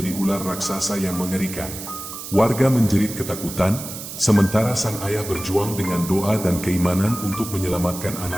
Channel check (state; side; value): noise; right; hiss, 10 dB below the sound